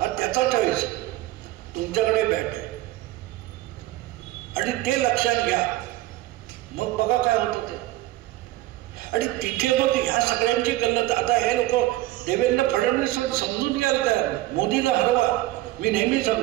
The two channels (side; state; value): left; quieter; 16.6 dB